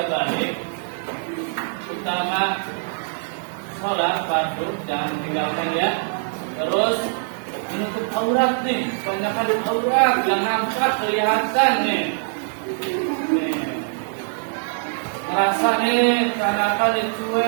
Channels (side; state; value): left; silent; 64 dB below the other